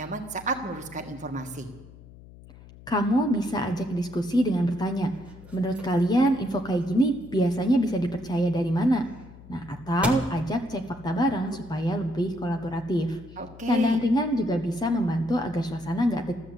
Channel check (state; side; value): noise; left; hum, 20 dB below the sound